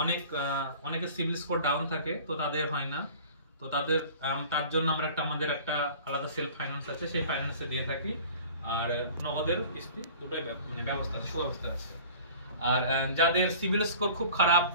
অনেকের সিভিল স্কোর ডাউন থাকে, তো তাদের হয় না, তো তার জন্য আমরা আমাদের একটা আলাদা সেলফ ফাইন্যান্স আছে, সেই ফাইন্যান্সে দিয়ে থাকি। আর নগদের কিস্তি দুটোই মানে ব্যবস্থা আছে, সুব্যবস্থা আছে। আর যাদের সিভিল স্কোর খুব খারাপ,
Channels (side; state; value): both; inverted; correlation -0.44